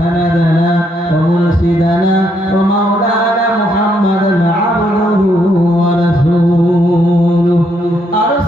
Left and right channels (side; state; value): both; normal; correlation 0.74